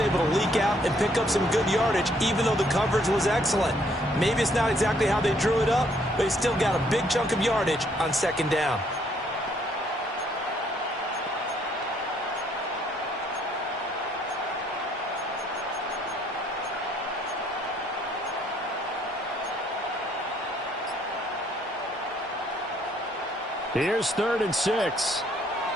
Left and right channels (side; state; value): both; normal; correlation 0.67